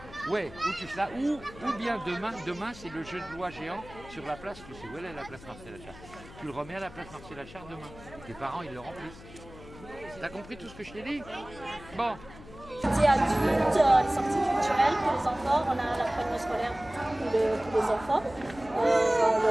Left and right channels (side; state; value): left; noise; hum, 18 dB below the sound